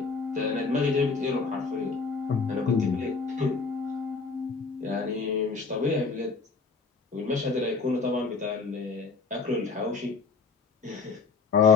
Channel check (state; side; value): quieter; right; 4.6 dB